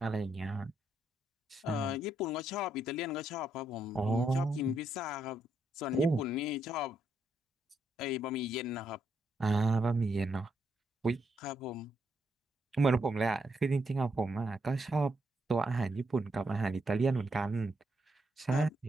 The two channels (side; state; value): both; normal; correlation 0.78